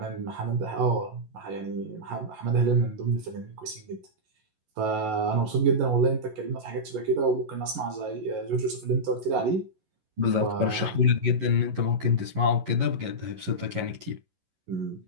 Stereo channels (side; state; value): left; late; 11 ms